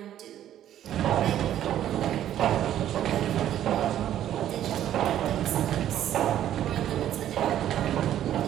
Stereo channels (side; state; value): left; quieter; 11.5 dB